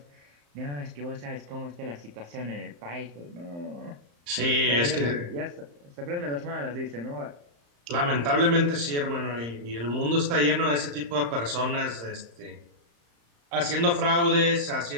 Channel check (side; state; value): left; late; 35 ms